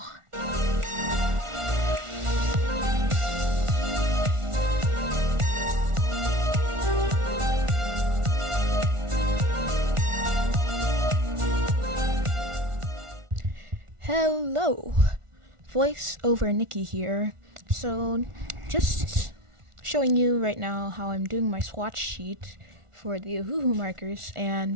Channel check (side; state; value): left; late; 1.4 ms